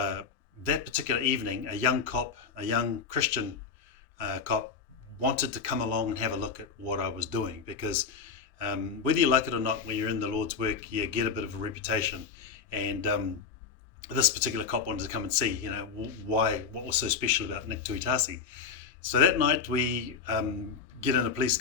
particular evening, a young cop, a young Christian cop, wanted to come along and have a look at what I was doing, because whether you like it or not, when you're in the Lord's work, you get a bit of a reputation. And this particular cop wanted to come and see, what was so special about Nick Tuitasi. So that night we get in a police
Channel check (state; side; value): quieter; right; 5.9 dB